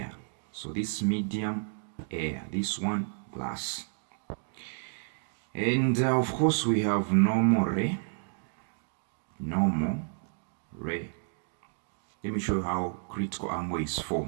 So this medium, air, this one, glass. And of course we have normal ray. Normal ray. Let me show you how critical angle is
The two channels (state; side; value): silent; left; 57 dB below the other